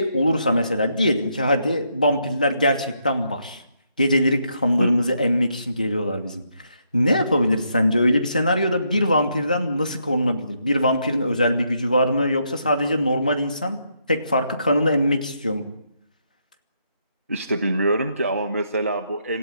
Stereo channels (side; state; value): both; inverted; correlation -0.77